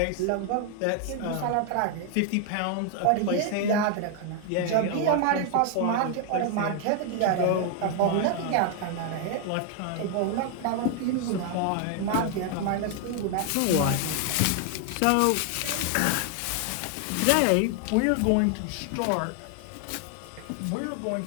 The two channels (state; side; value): different; both; correlation 0.00